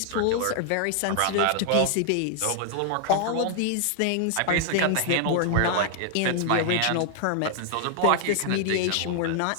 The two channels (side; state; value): both; different; correlation 0.00